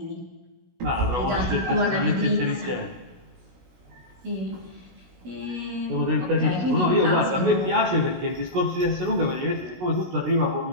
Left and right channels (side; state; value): left; late; 17 ms